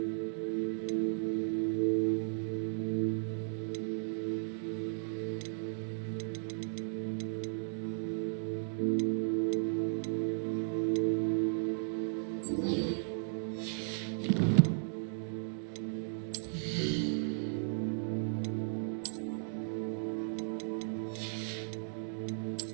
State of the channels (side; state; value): left; silent; digital silence